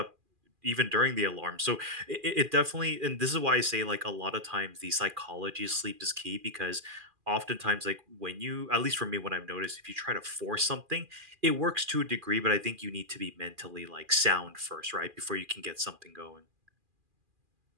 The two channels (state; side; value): late; left; 2.4 ms